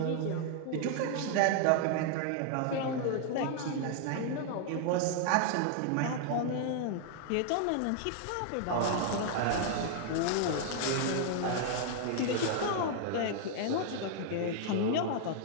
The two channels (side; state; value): both; different; correlation 0.00